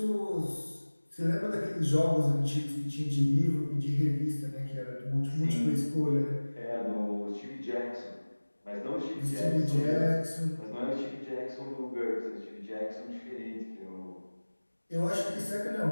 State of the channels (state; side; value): inverted; both; correlation -1.00